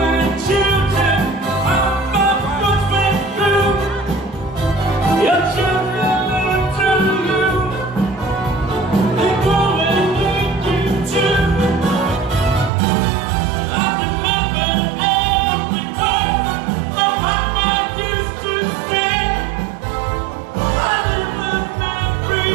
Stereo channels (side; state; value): left; drops out; at 12.7 s